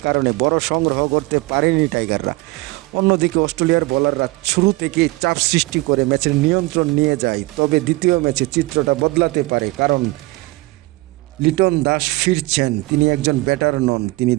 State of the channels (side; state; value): left; quieter; 22.1 dB